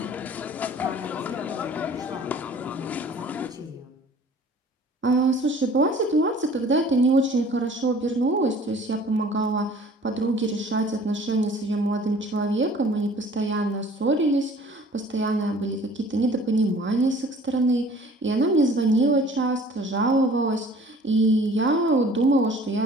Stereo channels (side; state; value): both; normal; correlation 0.50